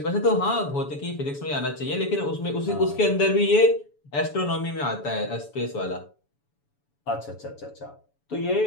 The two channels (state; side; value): late; right; 7.0 ms